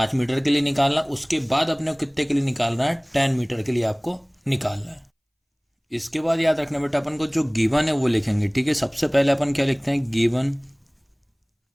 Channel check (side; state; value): both; identical; correlation 1.00